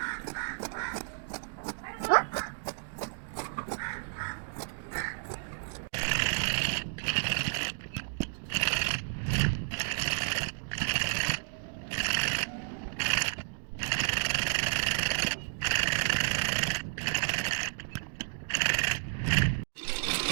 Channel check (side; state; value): left; silent; 57 dB below the other